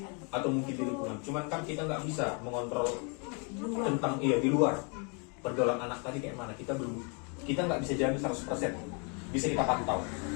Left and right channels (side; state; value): right; quieter; 36.2 dB